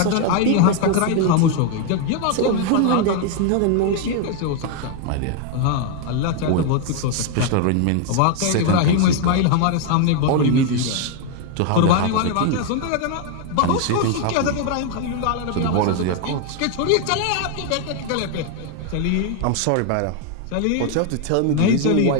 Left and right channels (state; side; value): different; both; correlation 0.01